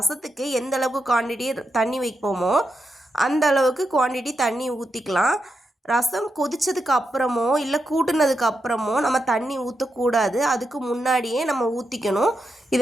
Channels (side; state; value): both; normal; correlation 0.86